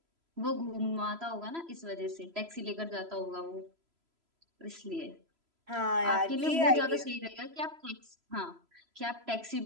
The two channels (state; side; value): late; left; 3.0 ms